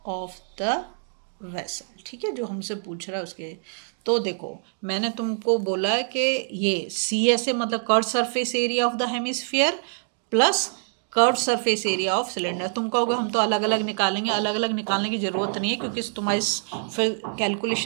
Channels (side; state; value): left; silent; digital silence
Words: of the vessel. ठीक है, जो हमसे पूछ रहा है उसके। तो देखो, मैंने तुमको बोला है कि ये सी एस ए मतलब curve surface area of the hemisphere plus curve surface area of cylinder. तुम कहोगे हम तो अलग अलग निकालेंगे, अलग अलग निकालने की ज़रूरत नहीं है, क्योंकि तुम्हारी फिर